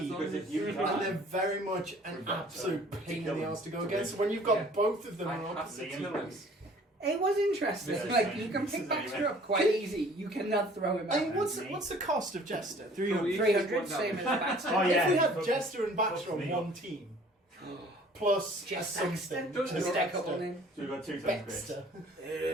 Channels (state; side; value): normal; both; correlation 0.52